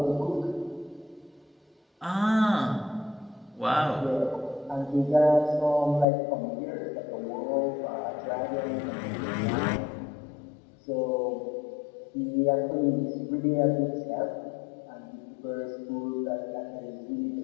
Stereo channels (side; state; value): right; drops out; at 6.1 s